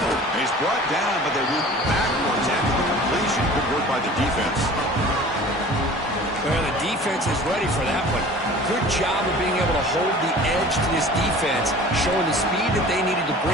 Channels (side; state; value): both; normal; correlation 0.44